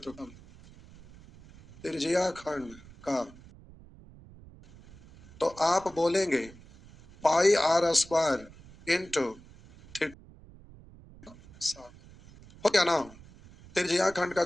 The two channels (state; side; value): noise; right; rumble, 22 dB below the sound